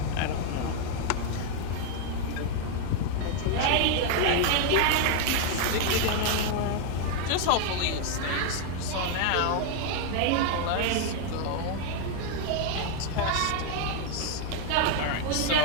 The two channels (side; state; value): both; different; correlation 0.01